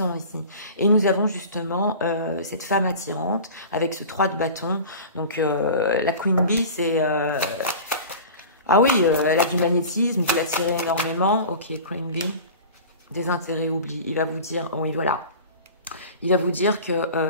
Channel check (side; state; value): both; inverted; correlation -0.37